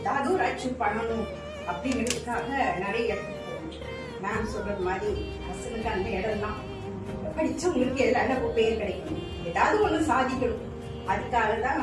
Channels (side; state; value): both; identical; correlation 1.00